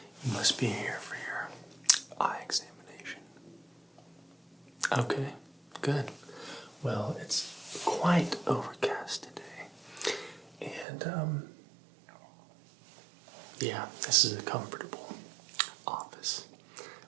must be here for your eye examination. Okay, good. Well, it's quite overcast today. And, yeah, this is a comfortable office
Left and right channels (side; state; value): left; drops out; at 10.9 s